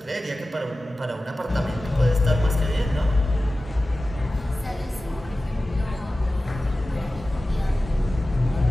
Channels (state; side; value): normal; both; correlation 0.95